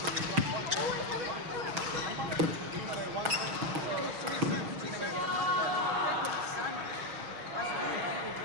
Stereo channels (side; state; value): left; late; 6.3 ms